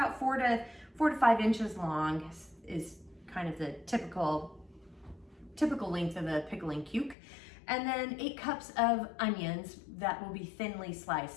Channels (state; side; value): drops out; right; at 7.2 s